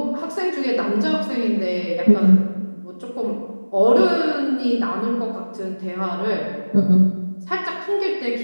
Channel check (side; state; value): both; inverted; correlation -1.00